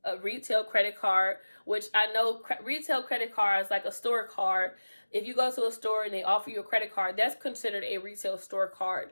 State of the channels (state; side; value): inverted; both; correlation -1.00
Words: a retail credit card, which I know retail credit cards, like a store card. If you go to a store and they offer you a credit card, that's considered a retail store card,